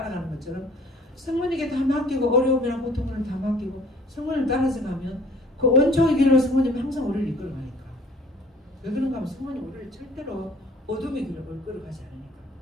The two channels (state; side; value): normal; both; correlation 0.53